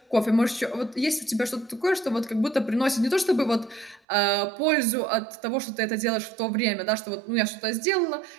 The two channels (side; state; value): left; drops out; at 4.0 s